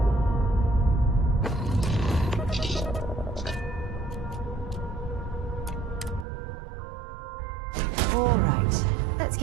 All right, let's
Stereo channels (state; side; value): drops out; left; at 6.2 s